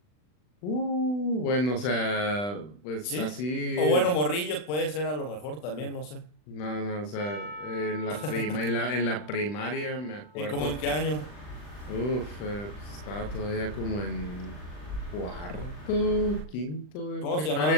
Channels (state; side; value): late; right; 40 ms